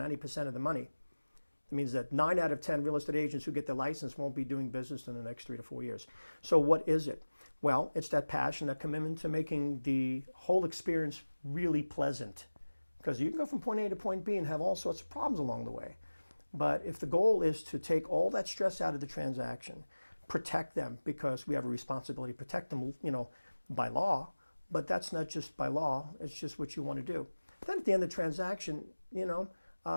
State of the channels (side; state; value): both; inverted; correlation -1.00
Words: of the money. It means that 9 out of 10 real estate agents who get their license won't be doing business in the next 3 to 4 years. So what is it? Well, it's that passion, that commitment to making the whole experience really pleasant. Because you can go from point A to point B and have all sorts of problems along the way. But if the goal is to take all that stress out of the transaction, protect them, because we have a responsibility to protect them, by law, but that's not just by law, it's just what you want to do. Then at the end of the transaction, they're not